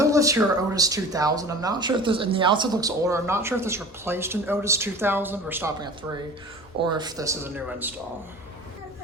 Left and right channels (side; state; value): both; normal; correlation 0.40